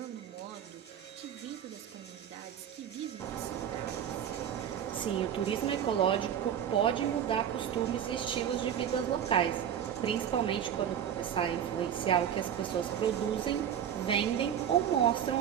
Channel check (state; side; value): quieter; left; 9.2 dB